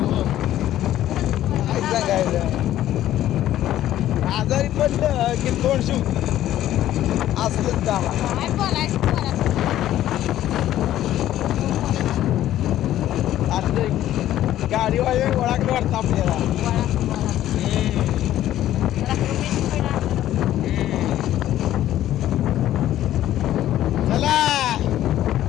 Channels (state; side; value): quieter; right; 12.9 dB